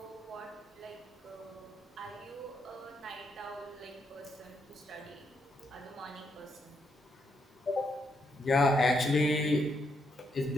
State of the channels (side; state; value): both; normal; correlation 0.78